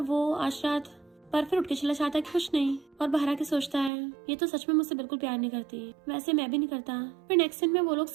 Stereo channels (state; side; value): drops out; left; at 3.9 s